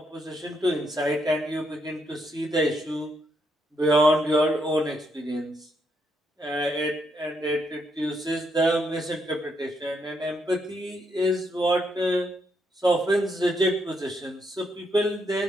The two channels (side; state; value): both; normal; correlation 0.77